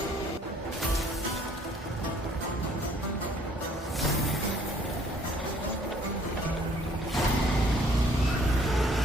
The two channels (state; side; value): normal; both; correlation 0.60